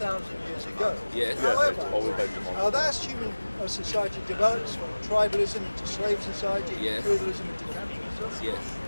years ago. Yes. However, as human society develops from tribalism into slave society, feudalism into capitalism,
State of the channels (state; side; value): inverted; both; correlation -1.00